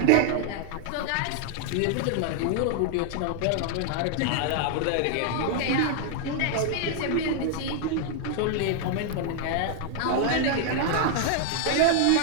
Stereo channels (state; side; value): different; both; correlation -0.01